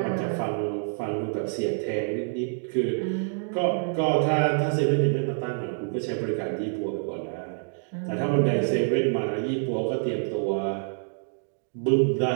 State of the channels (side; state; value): left; silent; 60 dB below the other